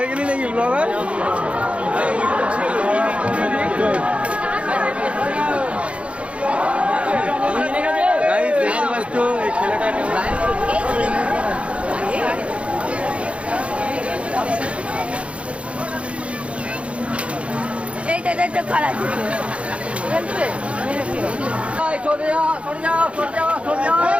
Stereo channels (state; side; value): late; left; 0.061 ms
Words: গেলি নাকি ব্লগার এইটা করা